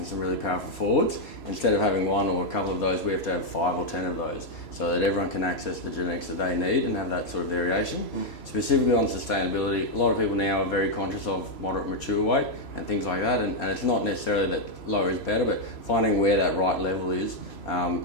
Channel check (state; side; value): late; right; 3.0 ms